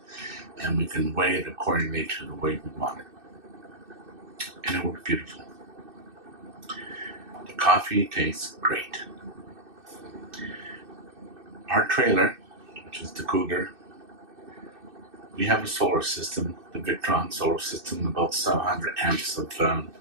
and we can weigh it accordingly to the way we want it. And it worked beautiful. coffee tastes great. Our trailer, which is the Cougar, we have a solar system, the Victron solar system, about 700 amps of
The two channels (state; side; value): late; left; 2.6 ms